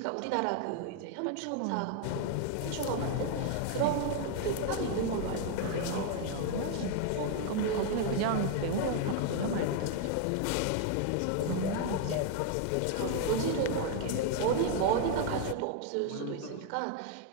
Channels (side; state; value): both; different; correlation 0.00